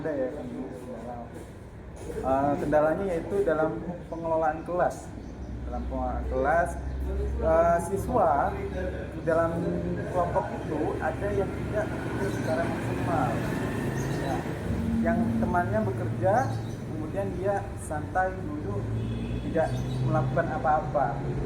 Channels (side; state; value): both; identical; correlation 1.00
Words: ya kendalanya yaitu dalam pengelolaan kelas. Dalam pengelolaan kelas, siswa di dalam kelompok itu ada yang tidak bekerja secara maksimal. Ya, yang temannya bekerja, kemudian kemudian dia santai duduk tidak melakukan apa-apa.